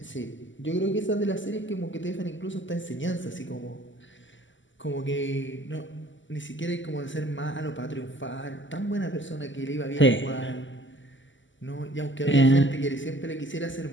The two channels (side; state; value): right; late; 0.55 ms